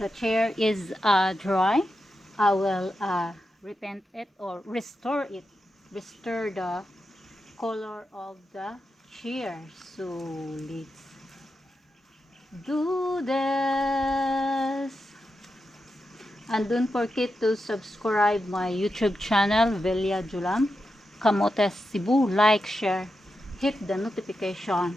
chair is dry, I will repaint it or restore it, restore the color of the chair. So let's do this. And don't forget to subscribe my YouTube channel, Velia Julam, Camotes Cebu. Like, share, hit the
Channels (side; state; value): both; normal; correlation 0.88